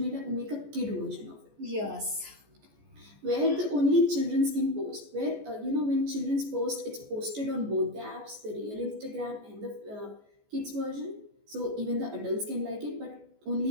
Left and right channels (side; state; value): left; late; 14 ms